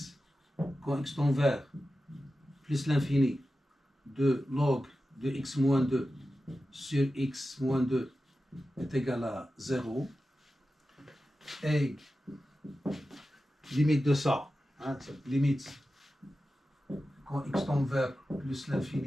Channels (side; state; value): both; normal; correlation 0.93